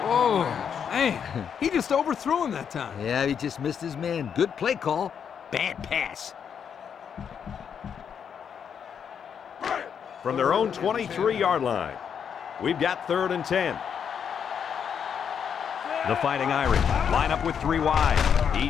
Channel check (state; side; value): quieter; right; 7.6 dB